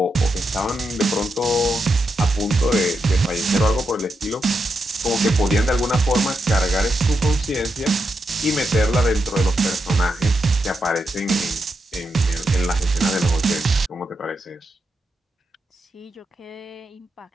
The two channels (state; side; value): normal; both; correlation 0.85